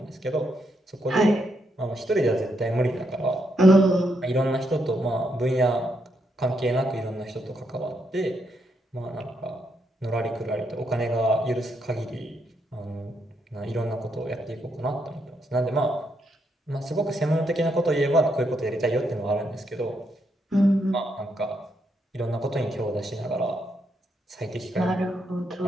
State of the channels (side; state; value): both; normal; correlation 0.79